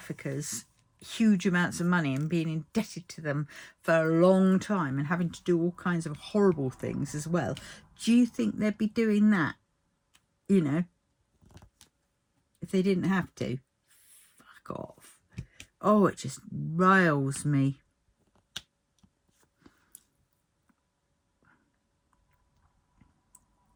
huge amounts of money and being indebted to them for a long time and having to do all kinds of horrible things as well? Do you think they'd be doing that, you know, if they didn't have to? Fuck off. Oh, it just riles me.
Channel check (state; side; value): identical; both; correlation 1.00